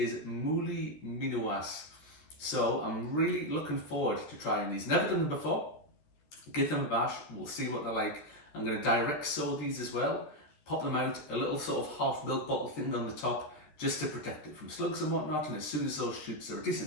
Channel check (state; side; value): late; right; 13 ms